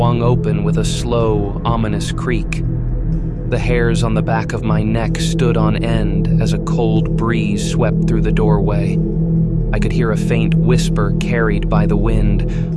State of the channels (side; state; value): both; identical; correlation 1.00